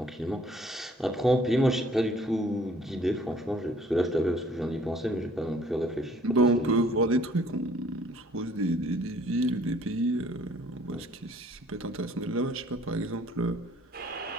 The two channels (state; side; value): normal; both; correlation 0.57